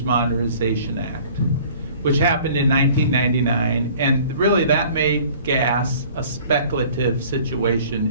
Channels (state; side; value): inverted; both; correlation -0.50